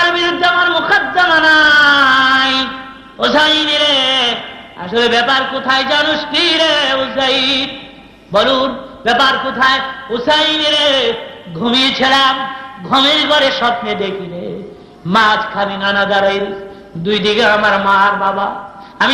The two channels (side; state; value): both; identical; correlation 1.00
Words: বিরুদ্ধে আমার মোকদ্দমা নাই। হুসাইন রে, আসলে ব্যাপার কোথায় জানুস কি রে হুসাইন? বলুন ব্যাপার কোথায়? হুসাইন রে, ঘুমিয়েছিলাম, ঘুমের ঘরে স্বপ্নে দেখি রে মাঝখানে নানা দাঁড়াই, দুই দিকে আমার মা আর বাবা। আমি